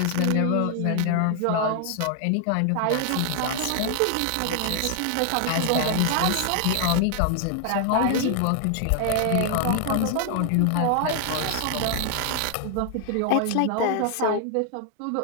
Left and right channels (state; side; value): different; both; correlation 0.00